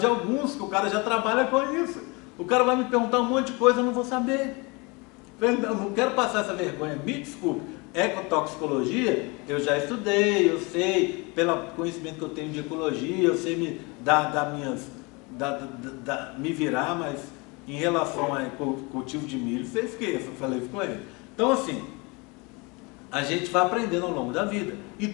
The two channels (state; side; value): quieter; right; 27.8 dB